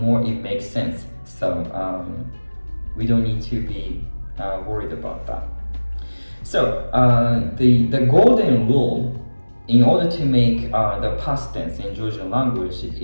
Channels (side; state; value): both; inverted; correlation -1.00